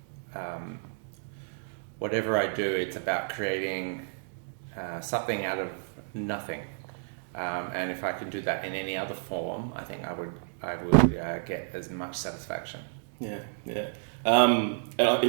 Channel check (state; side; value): silent; left; digital silence